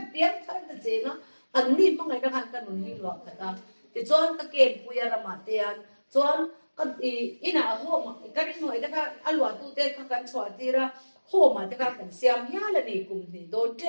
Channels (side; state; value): both; inverted; correlation -1.00